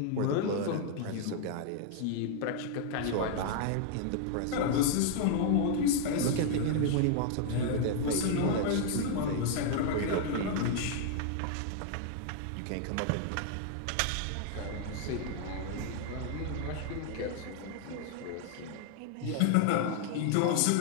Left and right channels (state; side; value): different; both; correlation 0.00